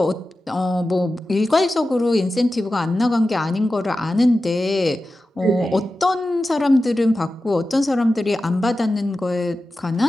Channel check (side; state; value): both; normal; correlation 0.93